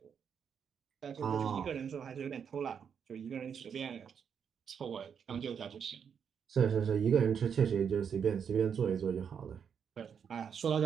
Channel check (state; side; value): quieter; left; 7.3 dB